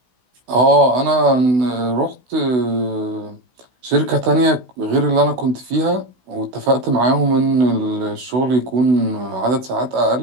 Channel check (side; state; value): left; late; 16 ms